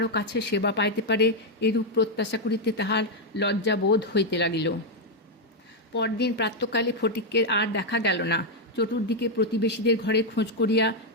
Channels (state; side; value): normal; both; correlation 0.01